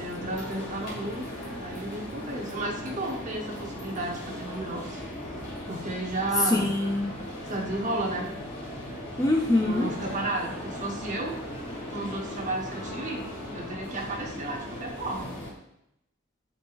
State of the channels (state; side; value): normal; both; correlation 0.43